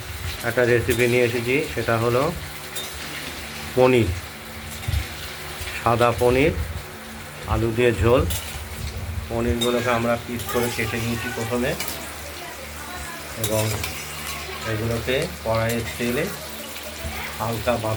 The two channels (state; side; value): identical; both; correlation 1.00